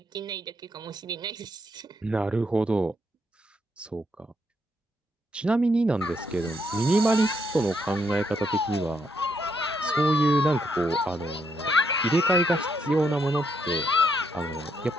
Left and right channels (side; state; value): both; normal; correlation 0.76